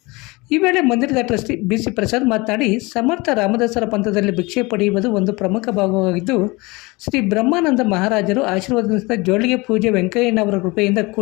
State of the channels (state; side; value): quieter; right; 24.5 dB